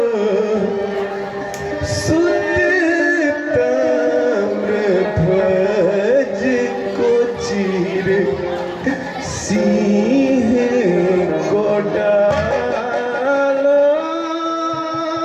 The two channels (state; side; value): identical; both; correlation 1.00